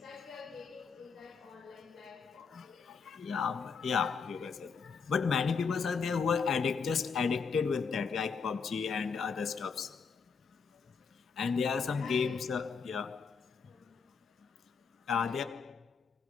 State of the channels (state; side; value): quieter; right; 5.6 dB